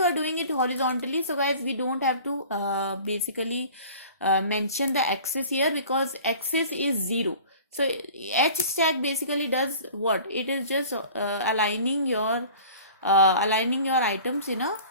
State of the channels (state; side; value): inverted; both; correlation -0.44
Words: are doing it horizontally, so guys, we don't have to basically mention the axis here, because axis is 0. So H stack basically does what? It is just aligning your items in a